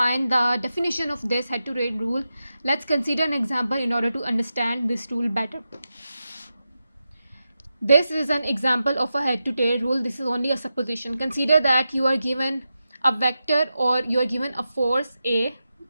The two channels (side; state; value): both; inverted; correlation -0.90